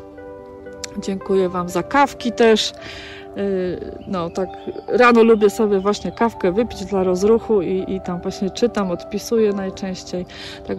Dziękuję wam za kawki też. No tak rano lubię sobie właśnie kawkę wypić dla rozruchu i tam właśnie czytam, odpisuję najczęściej.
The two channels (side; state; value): both; identical; correlation 1.00